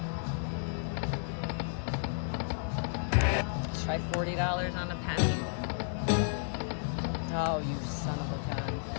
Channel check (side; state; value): right; silent; 56 dB below the other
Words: Let's try $40 on a penny. Oh, you son of a gun.